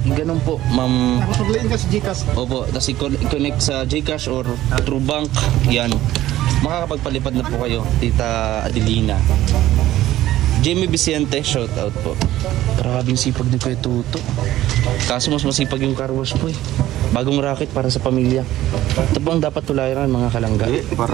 ganun po, ma'am. Nakapaglain ka sa Gcash. Opo, tapos i-connect sa Gcash or through bank. Yan. Makakapagpalipad na po kayo, Tita Adelina. Jamie Vicente, shout out po. Grabing sipag ni Kuya Tuto. Kaso mas masipag yung car wash po eh. Bagong racket para sa pamilya. Ito po ang dapat tulayan mga kalangga. Para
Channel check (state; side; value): quieter; left; 14.5 dB